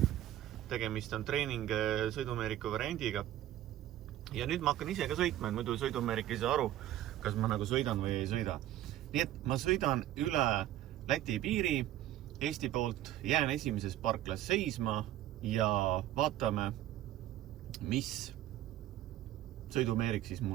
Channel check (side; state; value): left; quieter; 13.3 dB